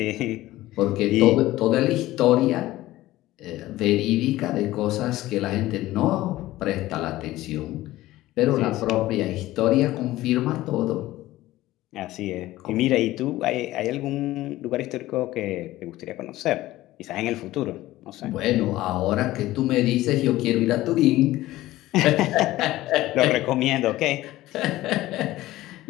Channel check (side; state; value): right; quieter; 16.4 dB